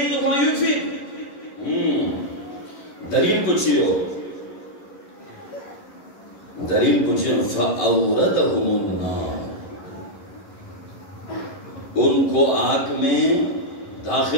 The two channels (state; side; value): late; right; 11 ms